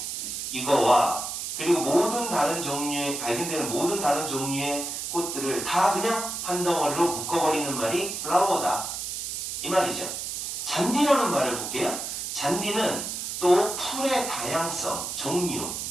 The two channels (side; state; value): right; noise; hiss, 5 dB below the sound